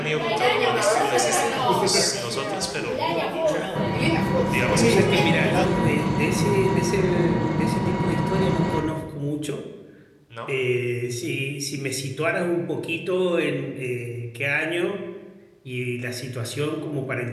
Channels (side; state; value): both; identical; correlation 1.00